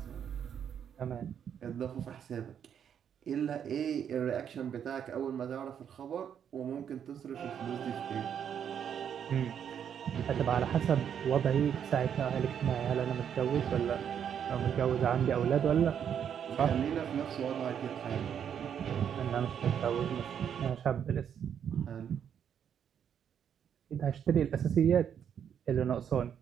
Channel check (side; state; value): left; quieter; 8.5 dB